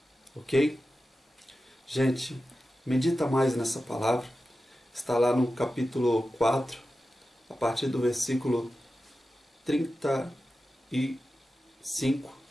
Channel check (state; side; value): normal; both; correlation 0.93